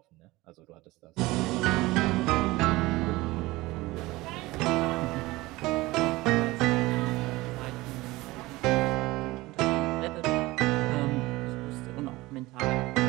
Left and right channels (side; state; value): left; quieter; 20.1 dB